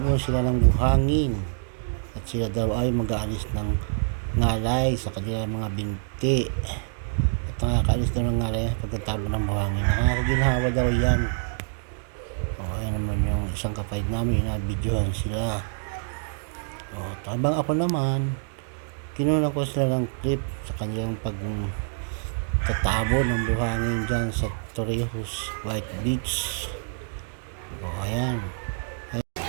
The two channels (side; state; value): left; silent; digital silence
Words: sila ng buhangin at sila daw ay mag-aalis ng ngalay sa kanilang mga binti. At nakakaalis daw ng ngalay pagkatapon ng buhangin. Nakakaginhawa daw yan. Ayan naman yung isang kapatid namin, inabidyohan sila. Habang ako naman, kinuha ko sila ng clip sa kanilang pagtatabo ng buhangin dyan sa Torrijos, White Beach. Ayan.